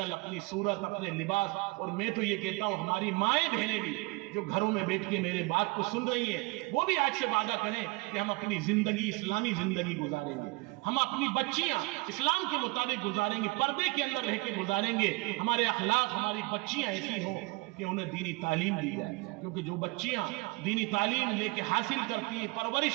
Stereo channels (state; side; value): quieter; left; 25.1 dB